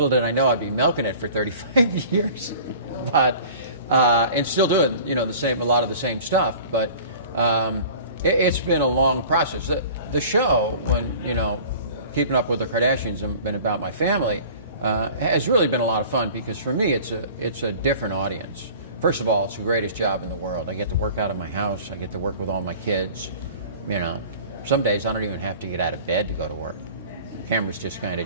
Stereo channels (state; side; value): inverted; both; correlation -0.44